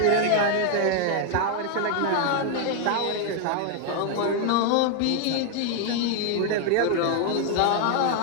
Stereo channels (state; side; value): different; both; correlation 0.00